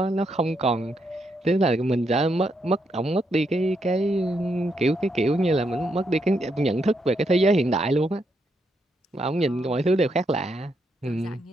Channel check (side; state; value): both; normal; correlation 0.79